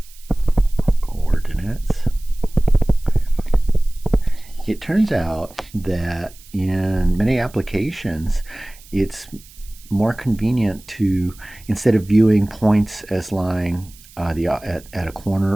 It turns out that in many applications, it's more convenient to, instead of viewing points as lying at a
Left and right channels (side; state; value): right; noise; hiss, 23 dB below the sound